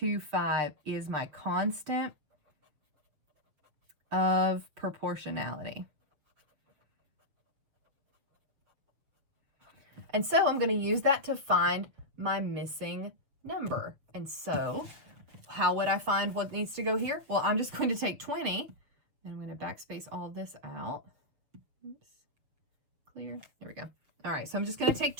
is my constant of proportionality. And so I'm going to use that to find my missing number. And so how would I find what needs to go here? Well, I'm just going to take 20, and I'm going to backspace all of this out. Oops. Clear. There we go. All right, so I'm just going to take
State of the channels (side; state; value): left; late; 7.2 ms